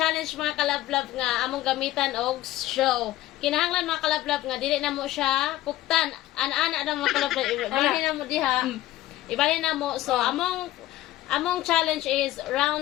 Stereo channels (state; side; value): quieter; right; 15.4 dB